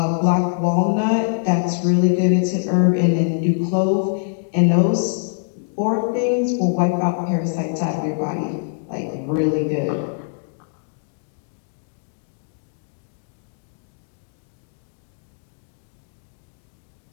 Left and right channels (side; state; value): right; silent; digital silence